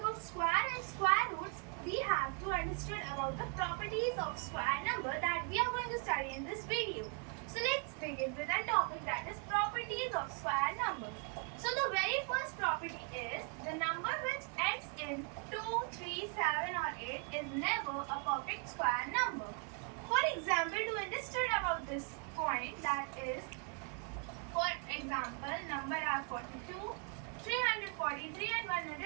square and square roots, we have to understand about the properties of square number that we are going to study in this video. So let's begin with the topic, that is properties of square number. So the very first property is the number which ends in 2, 3, 7 or 8 is never a perfect square number. For example, to understand about this point, that is, for example, number are 42, 343 and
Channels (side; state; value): left; quieter; 38.8 dB